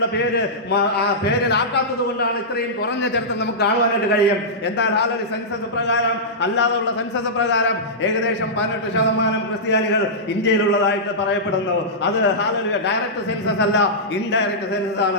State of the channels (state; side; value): normal; both; correlation -0.13